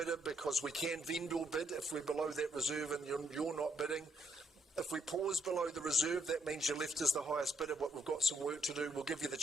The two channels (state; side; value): normal; both; correlation 0.74